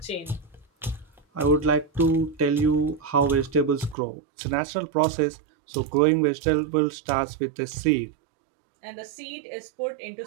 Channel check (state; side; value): drops out; left; at 4.0 s